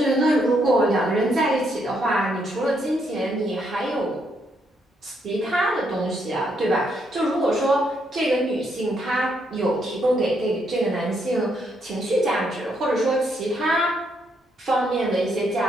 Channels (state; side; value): normal; both; correlation 0.75